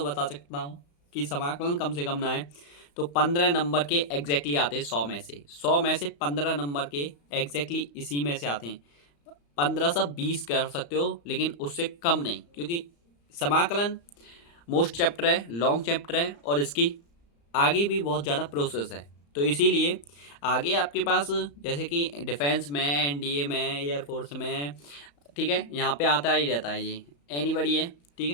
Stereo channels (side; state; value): right; late; 35 ms